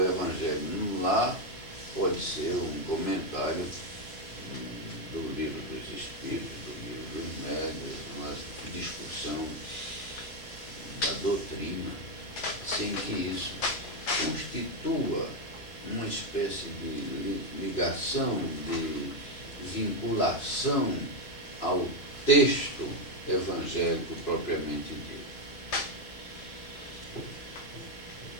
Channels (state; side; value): late; right; 3.0 ms